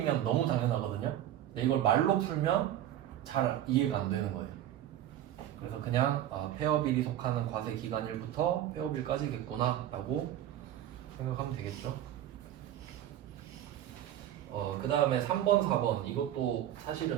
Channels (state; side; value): quieter; left; 12.0 dB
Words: 너무 당연하거든요. 근데 이걸 말로 풀면 잘 이해가 안 되는 거예요. 그래서 그냥 폐업일이 속하는 과세기간일부터 폐업일까지겠구나 라고 생각하면 되겠죠. 그 다음에 3번, 4번 이것도